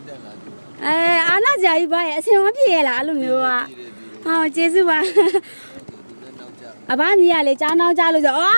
အားနာကြကြီးပါရဲ့အစင်မပြေရလားအဲ့လိုမျိုးကဟောကျေးဇူးပါအဘမြည်ရလေကျောင်းနောက်ကြလို့ဆိုအေ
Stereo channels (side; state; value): both; inverted; correlation -1.00